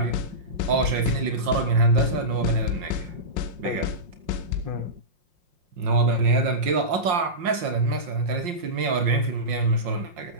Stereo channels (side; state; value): left; late; 5.6 ms